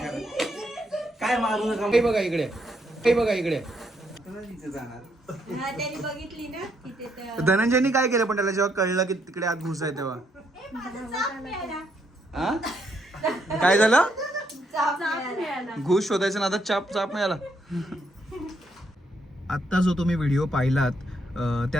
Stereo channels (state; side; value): normal; both; correlation 0.75